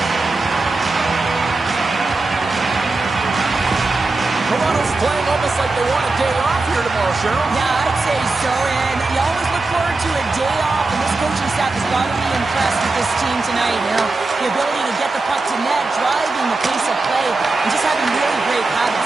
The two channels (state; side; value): quieter; left; 3.4 dB